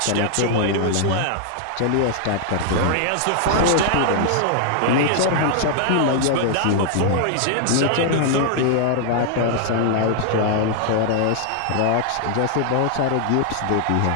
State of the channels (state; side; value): different; both; correlation 0.00